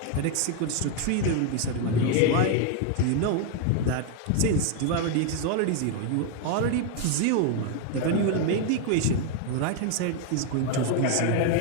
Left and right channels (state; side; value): different; both; correlation 0.01